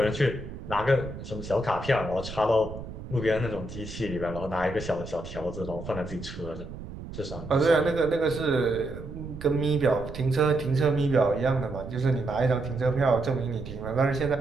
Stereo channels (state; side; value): noise; right; rumble, 11 dB below the sound